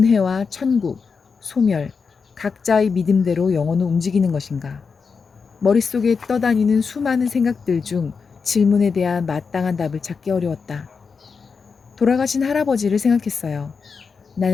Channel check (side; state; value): right; quieter; 5.3 dB